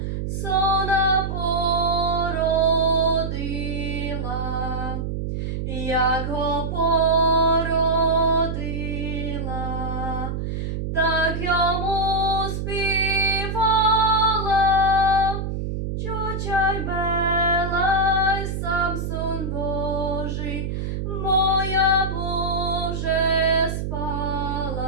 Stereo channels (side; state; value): right; noise; hum, 3 dB below the sound